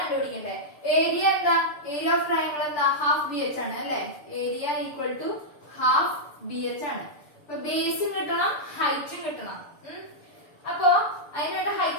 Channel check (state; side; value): late; right; 6.8 ms